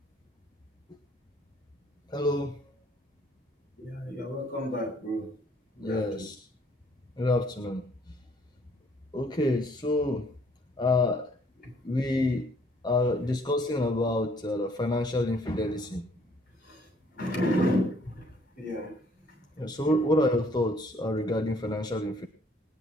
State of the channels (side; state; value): both; normal; correlation 0.62